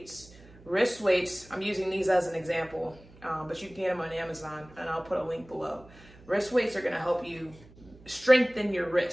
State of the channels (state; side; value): noise; right; hum, 23 dB below the sound